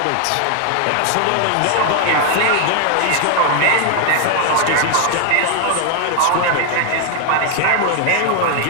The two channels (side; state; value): both; different; correlation 0.00